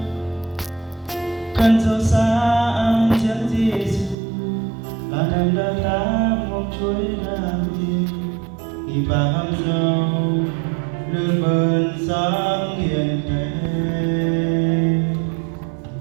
khăn dấu xa ang chân Giêsu là nằm đó ta một chuỗi ra đi khi bà hâm dâu lương bơn sáng hiền thế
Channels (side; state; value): left; drops out; at 4.2 s